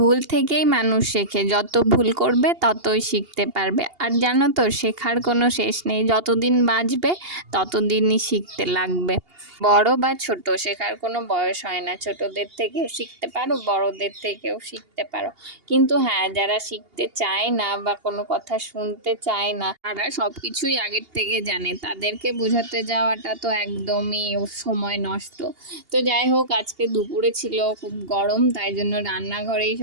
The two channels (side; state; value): left; late; 2.8 ms